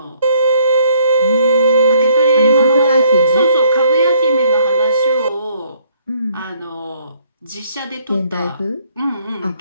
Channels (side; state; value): both; inverted; correlation -0.64